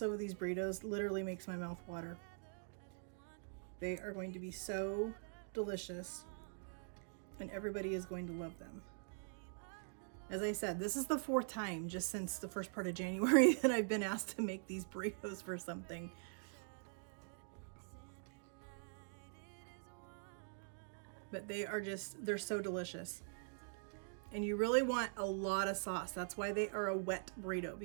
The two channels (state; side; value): silent; left; digital silence